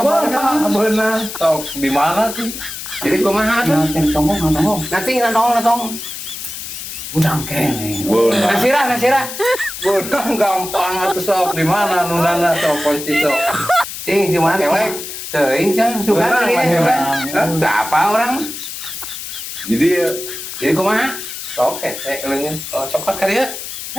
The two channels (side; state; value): left; noise; hiss, 8 dB below the sound